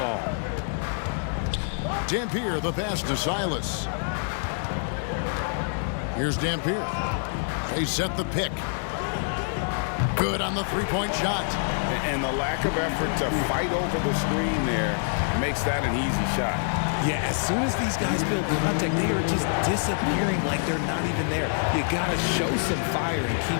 Dampier, the pass to Silas. Here's Dampier. They set the pick. Good on the three-point shot. And the lack of effort to fight over the screen there makes that an easy shot. Yeah, as soon as these guys build contact, they are just disappearing like they're not even there. You got to show some fire and keep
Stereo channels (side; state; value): right; silent; digital silence